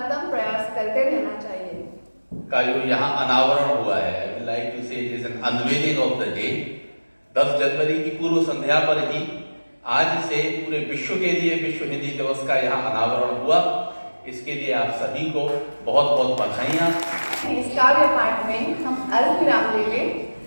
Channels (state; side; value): inverted; both; correlation -1.00